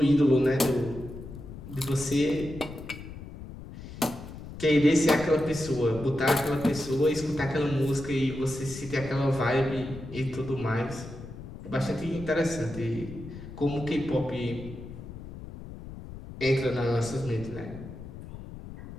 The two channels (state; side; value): noise; left; rumble, 12 dB below the sound